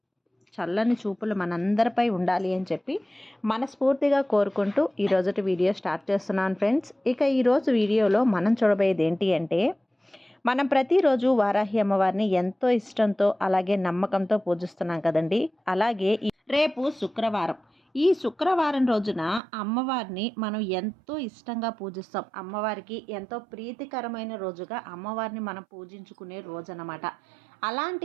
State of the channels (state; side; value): drops out; left; at 19.4 s